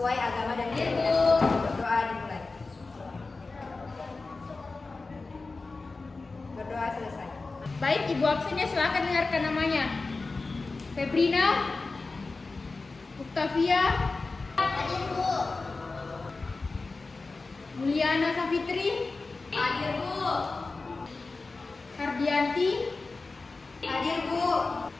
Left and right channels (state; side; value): quieter; right; 3.7 dB